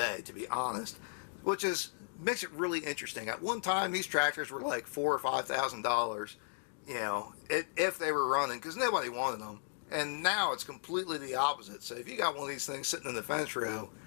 to be honest, which makes it really interesting. At one time, these tractors were like $4,000 or $5,000, you know, if they were running, because nobody wanted them. And now it's completely the opposite. So if you got one of these things sitting in the fence row,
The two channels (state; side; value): silent; right; digital silence